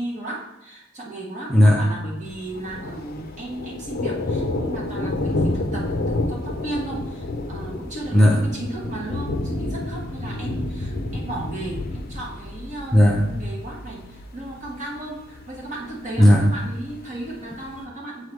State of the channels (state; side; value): normal; both; correlation 0.84